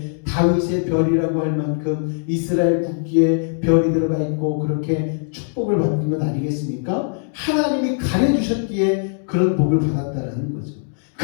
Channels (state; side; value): silent; right; digital silence